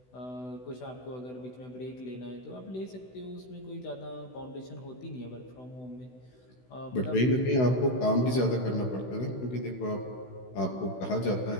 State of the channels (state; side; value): late; right; 16 ms